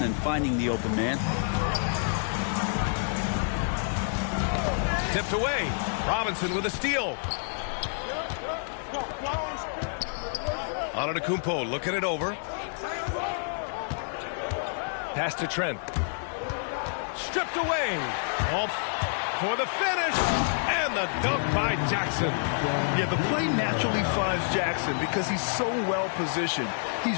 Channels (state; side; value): silent; right; digital silence